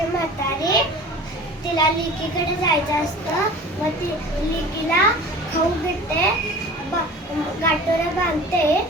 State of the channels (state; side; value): normal; both; correlation 0.41